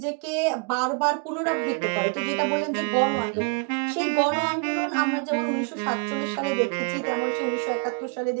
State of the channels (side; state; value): left; quieter; 35.0 dB